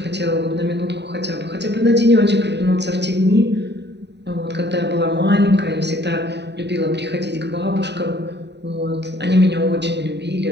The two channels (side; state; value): left; late; 0.50 ms